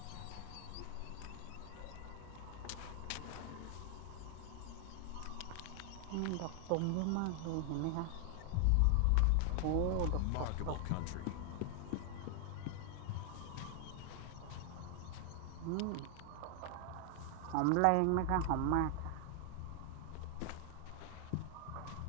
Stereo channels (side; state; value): both; different; correlation 0.00